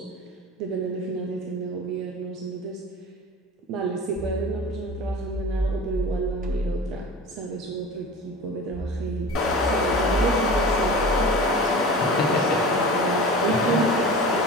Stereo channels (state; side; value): normal; both; correlation 0.35